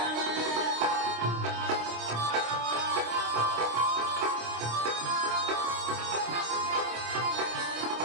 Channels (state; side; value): late; left; 26 ms